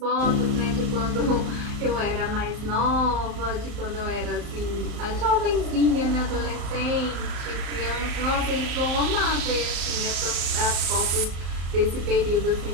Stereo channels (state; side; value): late; left; 35 ms